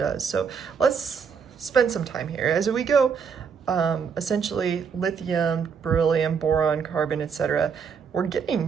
So let's spend some time here. As we go, essentially lithium, beryllium, boron, carbon, etc., we're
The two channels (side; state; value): left; quieter; 6.4 dB